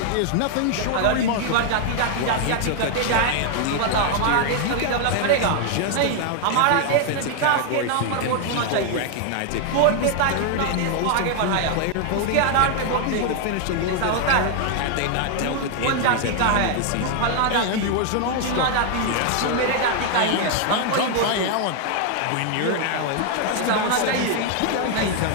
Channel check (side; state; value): both; different; correlation 0.00